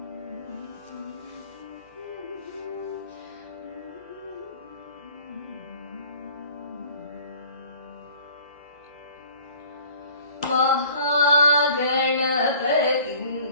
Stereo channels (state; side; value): inverted; both; correlation -0.50